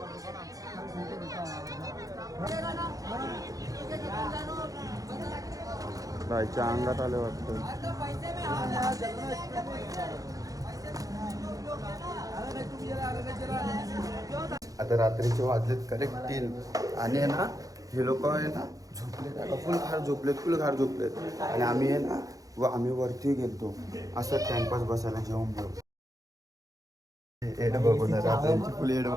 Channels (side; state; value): left; late; 0.17 ms